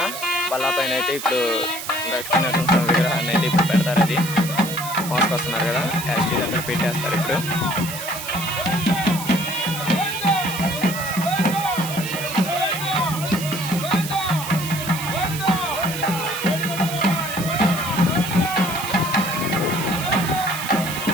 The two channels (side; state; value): right; noise; hiss, 8 dB below the sound